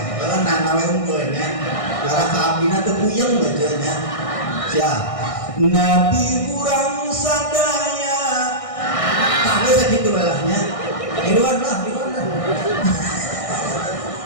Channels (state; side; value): late; right; 1.6 ms